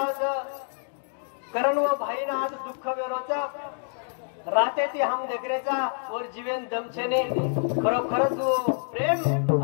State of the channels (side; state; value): right; silent; 60 dB below the other